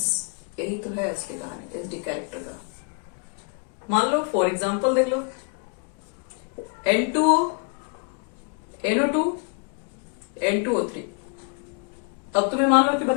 यही तो है इसकी कहानी एसिडिक कैरेक्टर का। मान लो फॉर एग्जांपल देख लो, N2O, NO2, N2O3। अब तुम्हें मान लो कि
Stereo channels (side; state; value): right; quieter; 37.3 dB